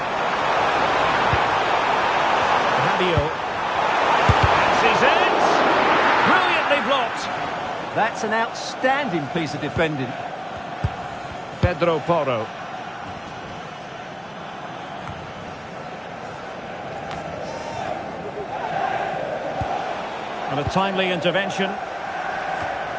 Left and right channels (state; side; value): identical; both; correlation 1.00